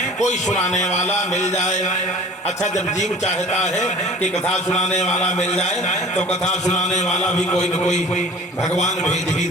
कोई सुनाने वाला मिल जाए। अच्छा, जब जीव चाहता है कि कथा सुनाने वाला मिल जाए तो कथा सुनाने वाला भी कोई न कोई भगवान भेज ही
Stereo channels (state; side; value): normal; both; correlation 0.45